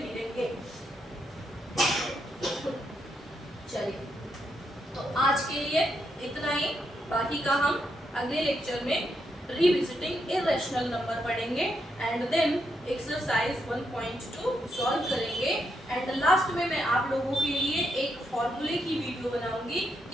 चलिए, तो आज के लिए इतना ही, बाकी का हम अगले लेक्चर में रिविजिटिंग इरेशनल नंबर पढ़ेंगे एंड देन एक्सरसाइज 1.2 सॉल्व करेंगे। एंड लास्ट में मैं आप लोगों के लिए एक फॉर्मूले की वीडियो बनाऊंगी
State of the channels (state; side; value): normal; both; correlation 0.80